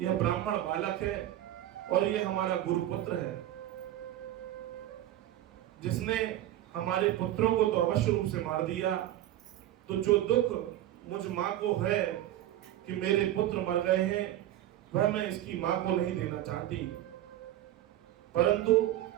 यह ब्राह्मण बालक है और यह हमारा गुरुपुत्र है। जिसने हमारे पुत्रों को तो अवश्य रूप से मार दिया, तो जो दुख मुझ माँ को है कि मेरे पुत्र मर गए हैं, वह मैं इसकी माँ को नहीं देना चाहती। परंतु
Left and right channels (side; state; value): left; quieter; 13.4 dB